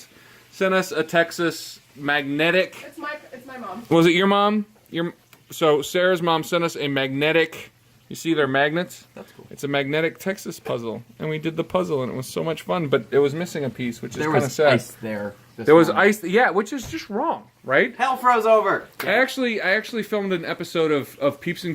sent us a Texas magnetic. It's my mom. Was it your mom? So Sarah's mom sent us a magnetic. You see their magnets? That's cool. It's a magnetic Texas puzzle, and we did the puzzle, and it was so much fun. But it was missing a piece, which is There kind of was sad. ice there. There was ice, yeah, which is just wrong, right? Hell froze over. I actually filmed an episode of Peeps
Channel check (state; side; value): identical; both; correlation 1.00